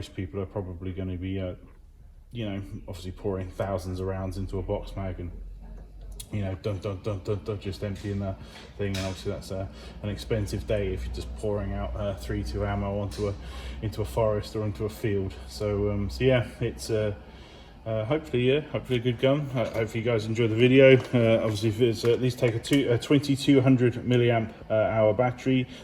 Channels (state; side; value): identical; both; correlation 1.00